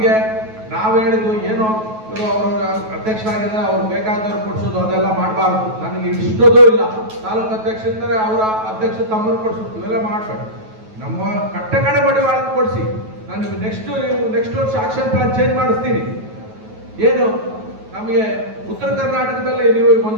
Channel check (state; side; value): late; left; 9.3 ms